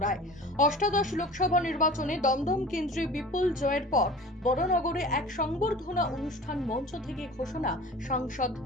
রায়। অষ্টাদশ লোকসভা নির্বাচনে দমদম কেন্দ্রে বিপুল জয়ের পর বড়নগরে এক সংবর্ধনা অনুষ্ঠান মঞ্চ থেকে ঘোষণা সাংসদ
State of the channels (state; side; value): normal; both; correlation 0.40